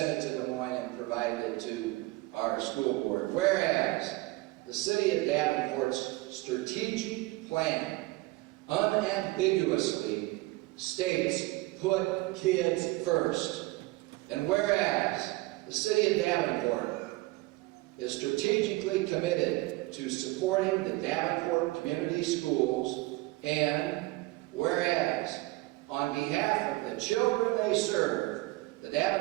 it to Des Moines and provided it to our school board. Whereas the city of Davenport's strategic plan unambiguously states put kids first. And whereas the city of Davenport is strategically committed to supporting the Davenport community schools, and whereas on behalf of the children they serve, the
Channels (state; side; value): quieter; left; 20.9 dB